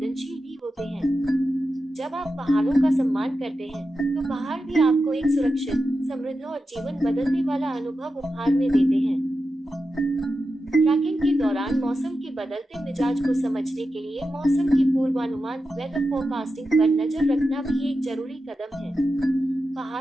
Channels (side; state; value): both; normal; correlation 0.90